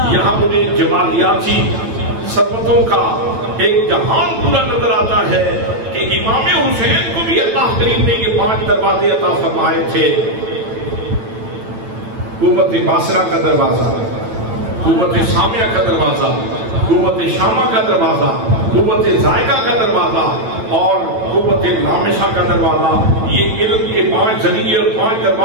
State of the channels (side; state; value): left; late; 9.0 ms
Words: یہاں مجھے جمالیاتی ثروتوں کا ایک جہان پورا نظر آتا ہے کہ امام حسین کو بھی اللہ کریم نے یہ پانچ دروازے عطا فرمائے تھے۔ قوت باصرہ کا دروازہ، قوت سامعہ کا دروازہ، قوت شامہ کا دروازہ، قوت ذائقہ کا دروازہ اور قوت لامسہ کا دروازہ۔ یہ علم کے پانچ ذریعے اور پانچ